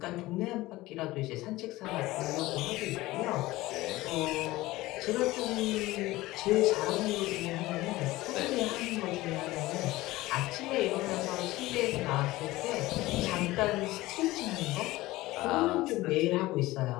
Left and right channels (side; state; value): right; quieter; 18.4 dB